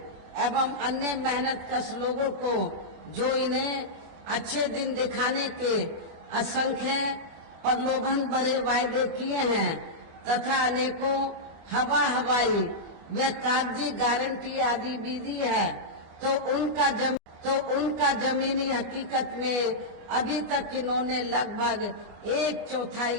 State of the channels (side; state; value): left; late; 25 ms